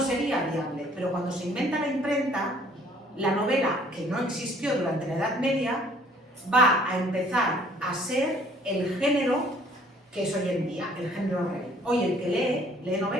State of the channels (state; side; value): normal; both; correlation 0.58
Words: viable, pero cuando se inventa la imprenta, la novela, que no existió durante la Edad Media, va a empezar a ser el género que es hoy en día, el género rey. Hoy el que lee